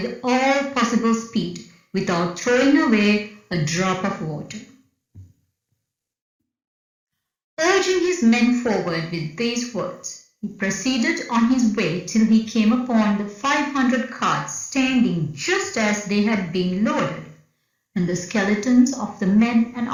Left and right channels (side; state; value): both; identical; correlation 1.00